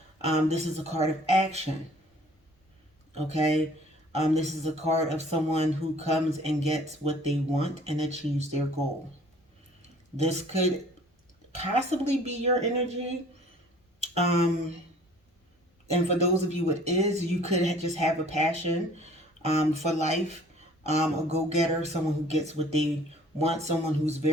This is a card of action. Okay? This is a card of someone who comes and gets what they want and achieves their goal. This could possibly be your energy. And for those of you it is, you could just have a passion for life, a go-getter, someone who gets what they want, someone who's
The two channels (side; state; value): both; normal; correlation 0.52